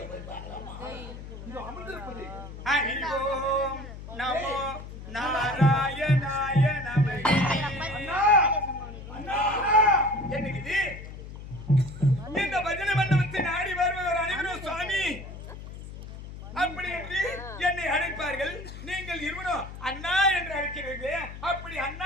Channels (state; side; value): noise; left; hum, 12 dB below the sound